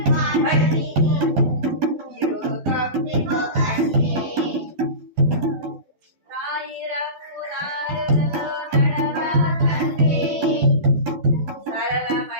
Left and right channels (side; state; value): left; late; 12 ms